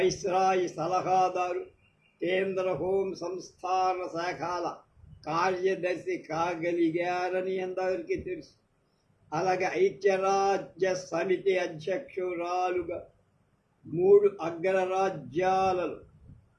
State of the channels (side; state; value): both; identical; correlation 1.00